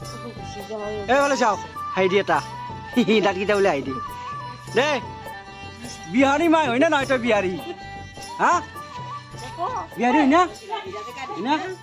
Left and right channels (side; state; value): both; identical; correlation 1.00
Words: এ বলে চাও হাইডি এটা দাঁতকেইটা বোলে হাইডি দে বিহারি মাই হয় না নয় তই বিহারি হ্যাঁ বিহারি হয় না